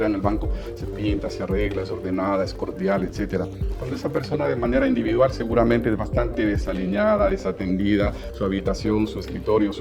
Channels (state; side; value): identical; both; correlation 1.00